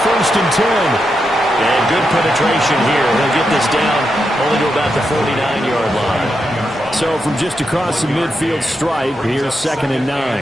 1st and 10. And good penetration here. He'll get this down only to about the 49-yard line. So from just across the midfield stripe, here's 2nd and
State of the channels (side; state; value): both; normal; correlation 0.85